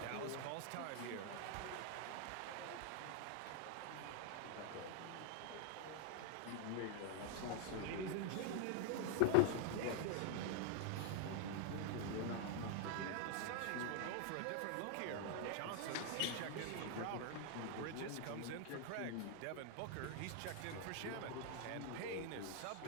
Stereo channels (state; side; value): different; both; correlation 0.00